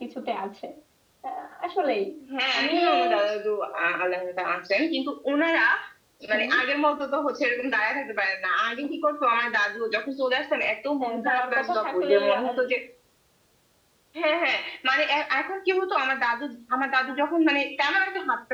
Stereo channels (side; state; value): both; identical; correlation 1.00